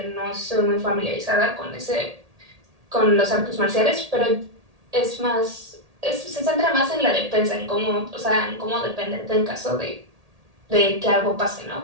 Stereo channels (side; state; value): left; late; 1.8 ms